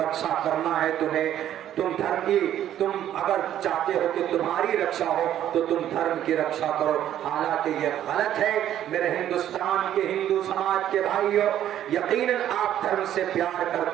کرنا ہے تمہیں، تم اگر چاہتے ہو کہ تمہاری رکشا ہو تو تم دھرم کی رکشا کرو، حالانکہ یہ غلط ہے۔ میرے ہندوستان کے ہندو سماج کے بھائیوں، یقیناً آپ دھرم سے پیار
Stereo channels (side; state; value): left; quieter; 11.3 dB